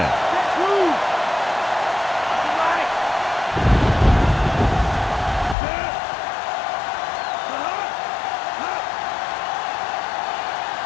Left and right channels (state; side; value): drops out; right; at 5.6 s